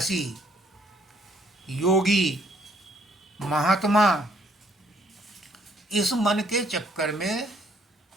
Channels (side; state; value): both; normal; correlation 0.66